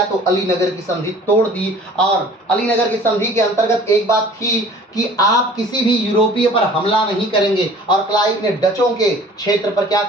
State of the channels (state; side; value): normal; both; correlation 0.48